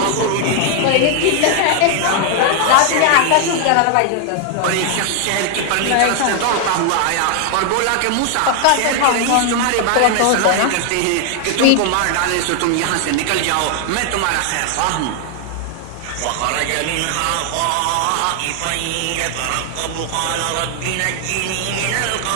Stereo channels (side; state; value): both; different; correlation 0.00